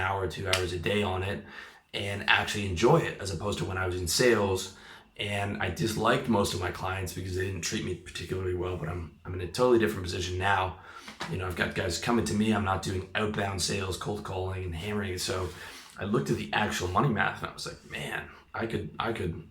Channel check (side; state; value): both; identical; correlation 1.00